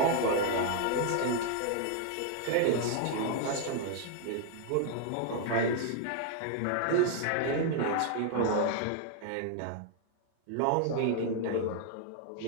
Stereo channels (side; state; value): both; different; correlation 0.00